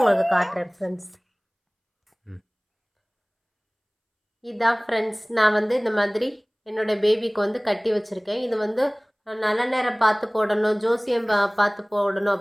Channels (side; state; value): both; identical; correlation 1.00